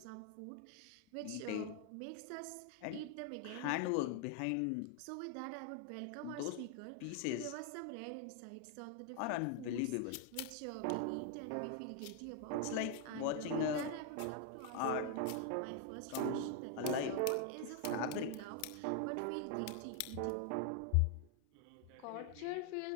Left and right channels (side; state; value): both; different; correlation 0.00